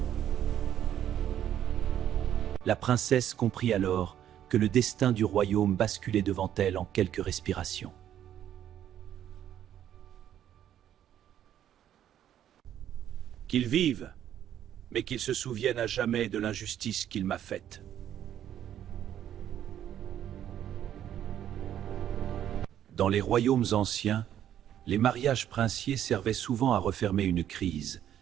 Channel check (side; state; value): left; quieter; 10.7 dB